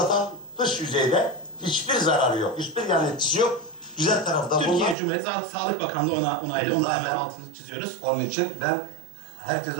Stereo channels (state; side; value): drops out; left; at 5.0 s